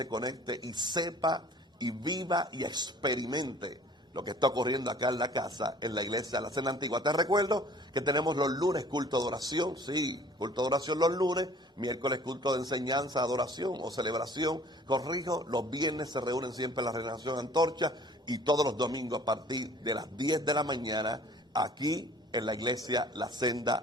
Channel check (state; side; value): normal; both; correlation 0.52